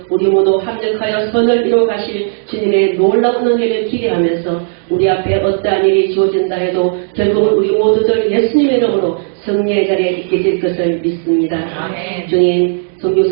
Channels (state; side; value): silent; left; digital silence